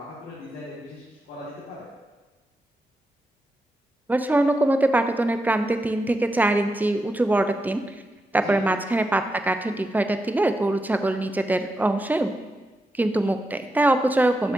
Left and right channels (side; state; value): both; normal; correlation 0.87